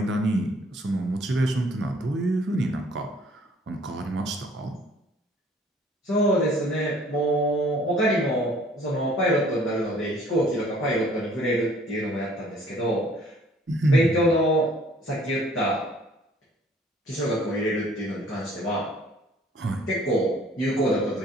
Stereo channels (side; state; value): both; normal; correlation 0.57